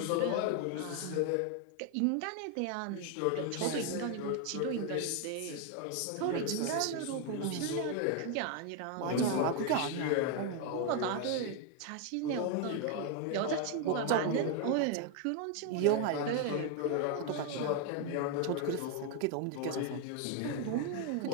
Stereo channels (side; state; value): both; different; correlation 0.01